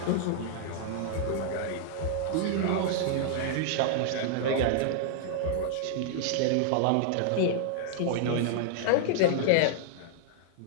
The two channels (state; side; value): different; both; correlation -0.01